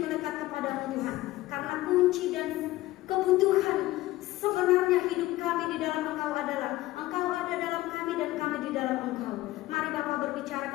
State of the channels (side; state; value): right; quieter; 17.2 dB